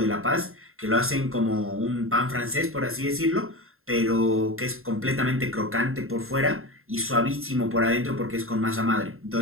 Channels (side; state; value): left; late; 0.61 ms